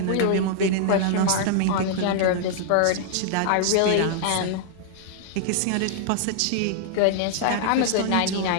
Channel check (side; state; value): both; different; correlation -0.01